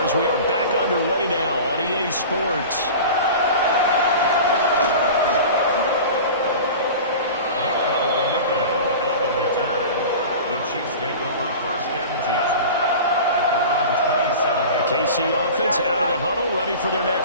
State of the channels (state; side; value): inverted; both; correlation -0.35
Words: we are back underway now on EA Sports. KC offense out of the huddle, ready for their